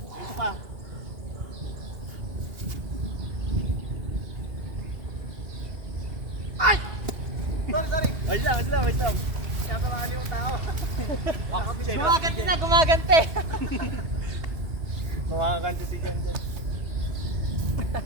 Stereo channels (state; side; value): late; left; 2.7 ms